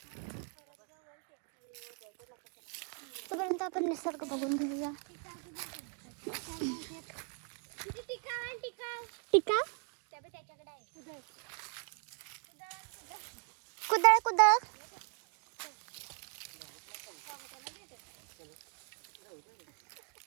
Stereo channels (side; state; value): left; quieter; 39.2 dB